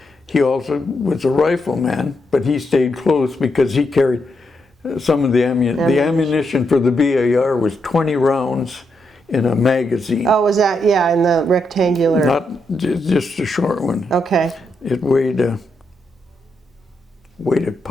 he also was a rifleman, but he stayed close because he carried some of the ammunition. The ammunition for the BAR was 20 rounds in a magazine. Oh, was that, yeah, in the rectangular? Not just a short one. Okay. It weighed a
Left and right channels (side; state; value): both; normal; correlation 0.81